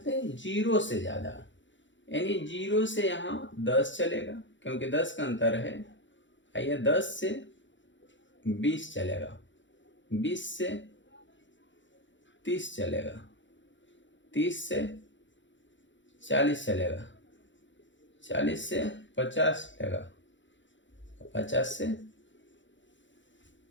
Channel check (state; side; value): late; right; 0.54 ms